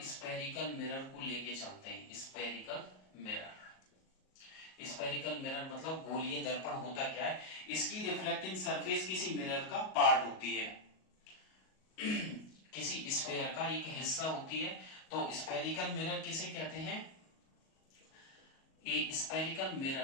स्पेरिकल मिरर को लेके चलते हैं। स्पेरिकल मिरर, स्पेरिकल मिरर मतलब गोलीय दर्पण होता क्या है? इसकी रिफ्लेक्टिंग सरफेस किसी मिरर का पार्ट होती है, किसी स्फीयर का एक हिस्सा होती है। तो स्पेरिकल मिरर किसे कहते हैं? ए spherical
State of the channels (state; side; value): late; right; 38 ms